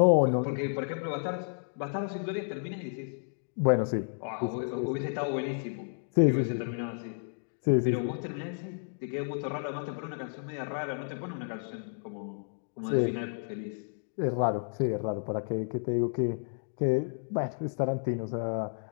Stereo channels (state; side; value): silent; right; digital silence